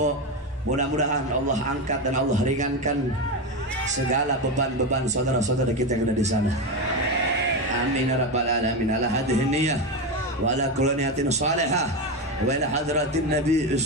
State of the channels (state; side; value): normal; both; correlation 0.14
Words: Mudah-mudahan Allah angkat dan Allah ringankan segala beban-beban saudara-saudara kita yang ada di sana. Amin ya rabbal alamin. Ala hadhihi niyyah wa ala kulli niyatin salihah wa ila hadratin nabi